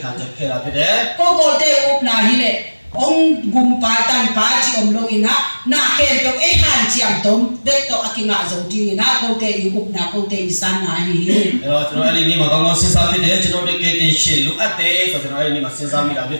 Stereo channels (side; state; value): both; inverted; correlation -1.00